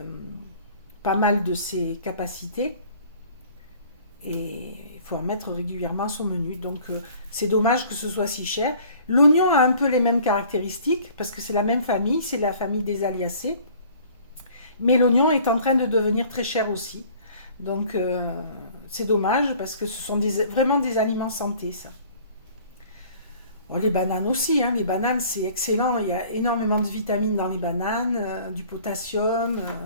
pas mal de ses capacités. Et il faut en mettre régulièrement à son menu. Donc c'est dommage que ce soit si cher. L'oignon a un peu les mêmes caractéristiques, parce que c'est la même famille, c'est la famille des Aliacées. Mais l'oignon est en train de devenir très cher aussi. Donc c'est dommage, parce que ce sont vraiment des aliments santé, ça. Bon, les bananes aussi, hein. Les bananes c'est excellent, il y a énormément de vitamines dans les bananes, du potassium...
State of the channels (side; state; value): both; inverted; correlation -0.51